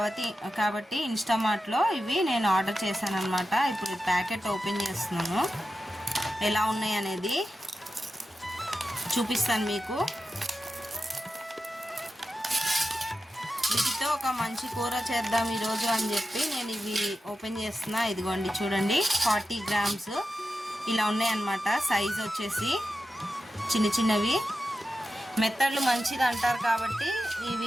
కాబట్టి ఇన్స్టామార్ట్లో ఇవి నేను ఆర్డర్ చేశాను అనమాట. ఇప్పుడు ఈ ప్యాకెట్ ఓపెన్ చేస్తున్నాను, ఎలా ఉన్నాయి అనేది చూపిస్తాను మీకు. వీటితో ఒక మంచి కూర చేద్దాం ఈరోజు అని చెప్పి నేను ఇవి ఓపెన్ చేస్తున్నా. ఇదిగోండి చూడండి, 40 grams ఇలా ఉన్నాయన్నమాట. సైజ్ వచ్చేసి చిన్న చిన్నవి. మెత్తళ్ళు మంచిది అంటారు కాబట్టి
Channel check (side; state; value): both; normal; correlation 0.91